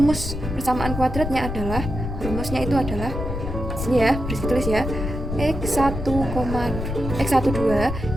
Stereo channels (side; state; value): left; noise; rumble, 5 dB below the sound